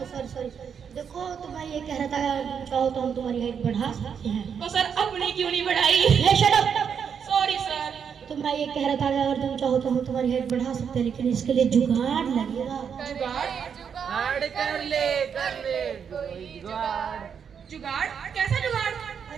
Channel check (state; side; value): quieter; left; 7.2 dB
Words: सॉरी, देखो तो मैं ये कह रहा था, चाहो तो हम तुम्हारी हाइट बढ़ा सकते हैं। तो सर अपनी क्यों नहीं बढ़ाई? Shut up. Sorry sir. तो मैं ये कह रहा था अगर तुम चाहो तो हम तुम्हारी हाइट बढ़ा सकते हैं, लेकिन इसके लिए जुगाड़ लगेगा। जुगाड़ कर ले कोई जुगाड़। जुगाड़? कैसा जुगाड़?